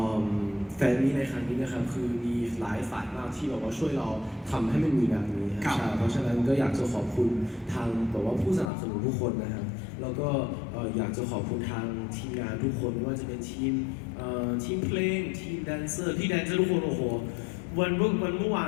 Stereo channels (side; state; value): right; drops out; at 8.7 s